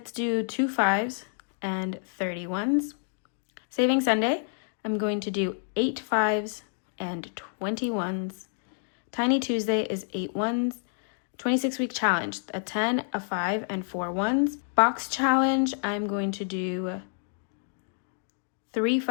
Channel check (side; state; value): right; silent; digital silence